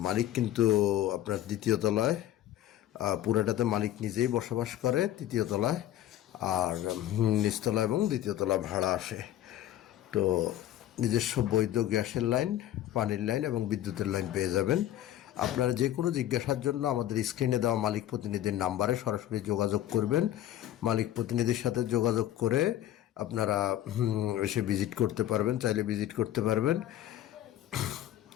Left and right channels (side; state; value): right; quieter; 12.7 dB